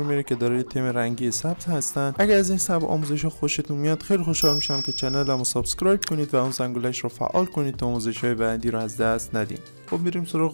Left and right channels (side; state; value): both; inverted; correlation -1.00